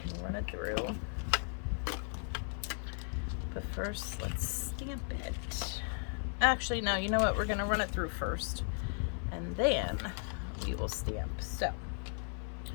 can run it through. But first, let's stamp it. Actually, no, you know what? We're gonna run it through first, and then we will stamp. So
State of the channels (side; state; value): right; silent; 54 dB below the other